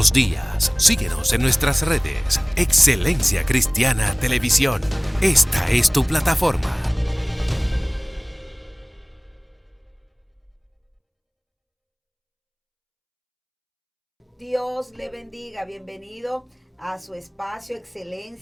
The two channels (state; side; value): identical; both; correlation 1.00